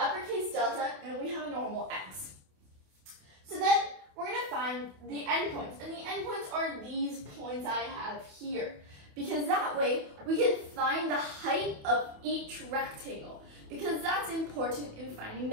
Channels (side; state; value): left; late; 28 ms